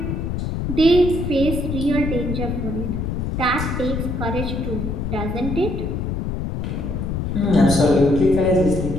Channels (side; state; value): left; noise; rumble, 2 dB below the sound